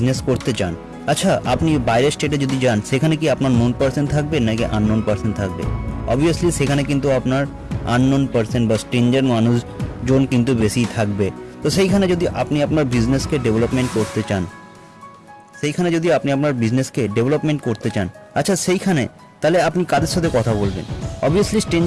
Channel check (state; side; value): identical; both; correlation 1.00